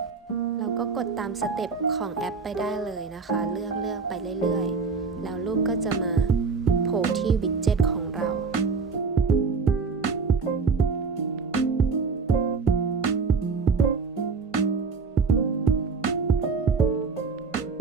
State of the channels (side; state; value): left; quieter; 4.9 dB